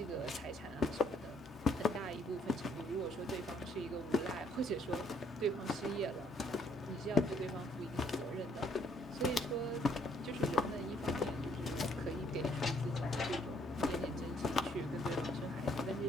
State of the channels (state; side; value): normal; both; correlation 0.67